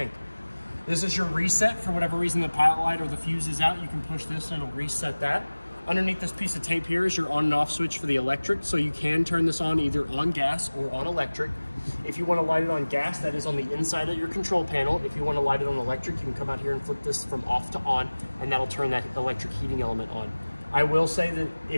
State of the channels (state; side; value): inverted; both; correlation -1.00